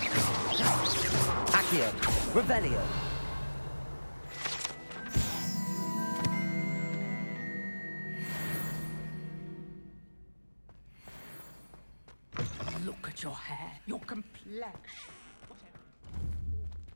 Accio. Revelio. Look at your hair, your complexion.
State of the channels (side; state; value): both; inverted; correlation -1.00